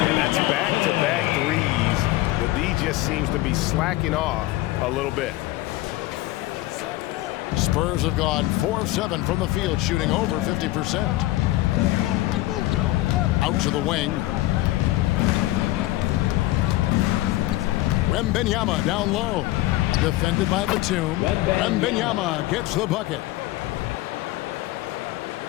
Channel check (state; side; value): quieter; right; 17.4 dB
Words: that's back-to-back threes. The D just seems to be slacking off a little bit. Spurs have gone 4 of 7 from the field, shooting over 50%. Out to the wing. Wembanyama down low. Defended by Batum. Wembanyama gets the bucket.